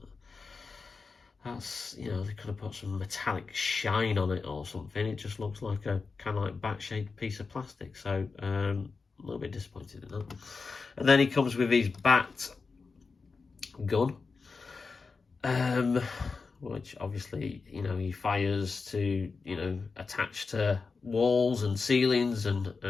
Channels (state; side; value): quieter; right; 4.6 dB